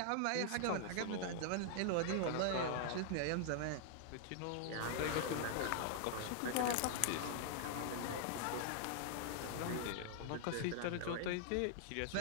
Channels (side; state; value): both; different; correlation -0.01